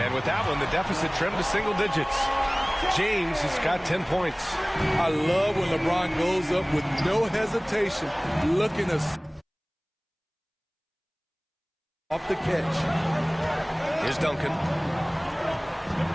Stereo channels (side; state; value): both; identical; correlation 1.00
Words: with that one, the deficit trimmed to single digits. James has got 10 points. I love when LeBron goes up with no hesitation, looking to off the catch. Here's Duncan.